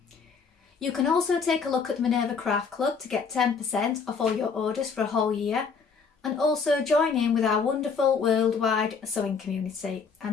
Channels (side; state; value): right; quieter; 5.5 dB